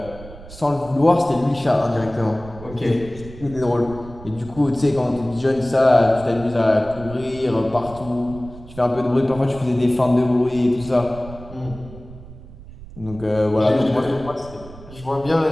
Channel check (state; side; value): noise; right; rumble, 17 dB below the sound